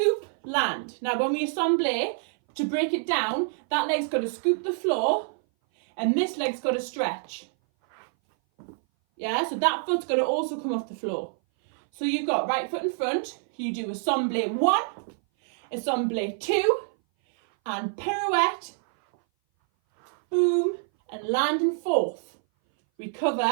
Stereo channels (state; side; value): silent; left; 58 dB below the other